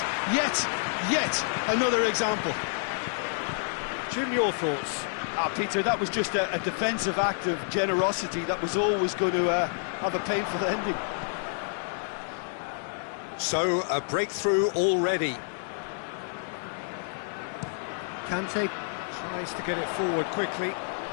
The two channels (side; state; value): right; silent; digital silence